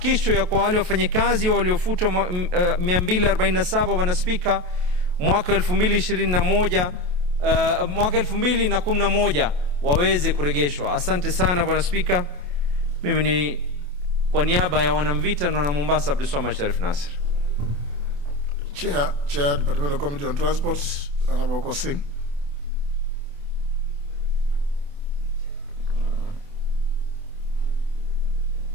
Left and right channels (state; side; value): late; left; 28 ms